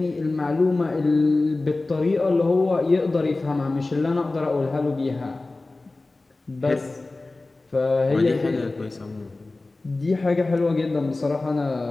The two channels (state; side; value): quieter; right; 3.2 dB